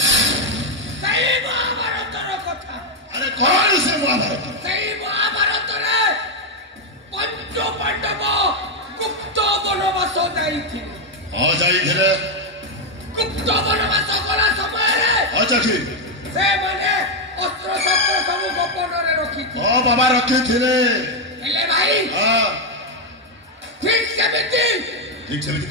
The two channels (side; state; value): both; normal; correlation 0.03